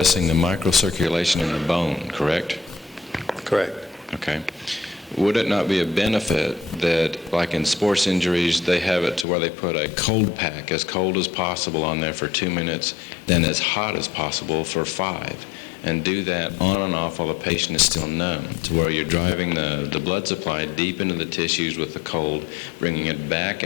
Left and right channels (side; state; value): right; drops out; at 9.2 s